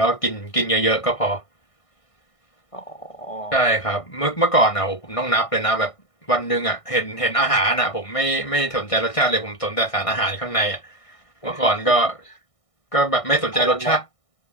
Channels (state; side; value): late; right; 1.6 ms